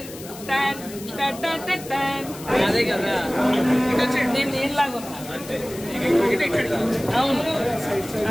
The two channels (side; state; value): left; noise; hiss, 15 dB below the sound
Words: నేను నీళ్ళలాగా ఉన్నా. అవును